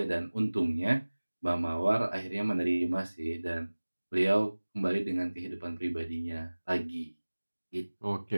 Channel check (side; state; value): both; inverted; correlation -1.00